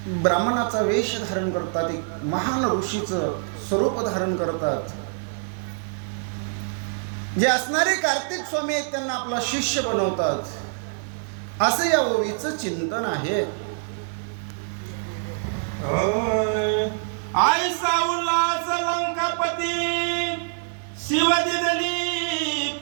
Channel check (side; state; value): left; silent; 58 dB below the other